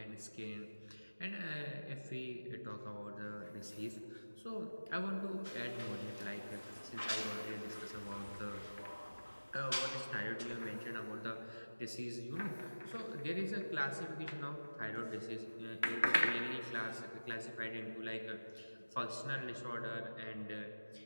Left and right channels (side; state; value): both; inverted; correlation -1.00